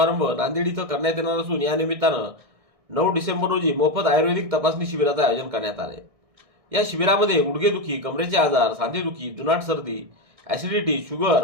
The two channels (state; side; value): late; left; 1.6 ms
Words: नांदेड इथं करण्यात येणार असून या निमित्तानं 9 डिसेंबर रोजी मोफत आयुर्वेदिक तपासणी शिबिराचं आयोजन करण्यात आले. या शिबिरामध्ये गुडघेदुखी, कमरेचे आजार, सांधेदुखी, जुनाट सर्दी, ऍसिडिटी,